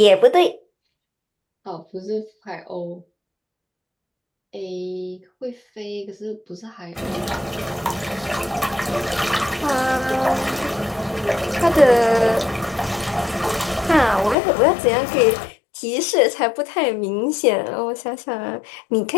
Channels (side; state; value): right; drops out; at 14.4 s